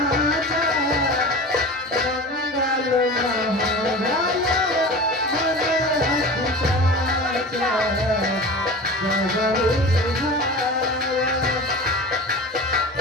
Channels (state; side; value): normal; both; correlation 0.34